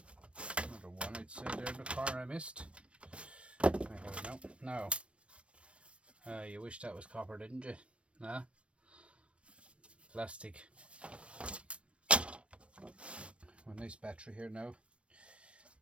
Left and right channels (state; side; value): late; left; 0.060 ms